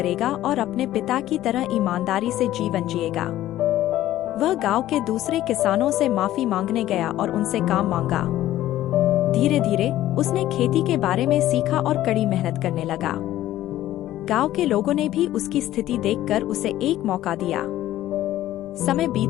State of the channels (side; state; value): right; quieter; 14.0 dB